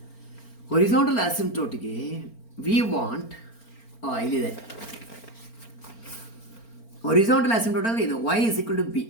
Horizontal ಆಸಿಂಪ್ಟೋಟಿಗೆ we want ಇಲ್ಲಿದೆ. Horizontal asymptote ಅಂದರೆ ಇದು y is equal to b.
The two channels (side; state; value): right; late; 4.4 ms